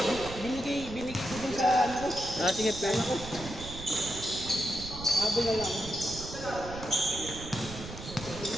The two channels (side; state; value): right; noise; rumble, 11 dB below the sound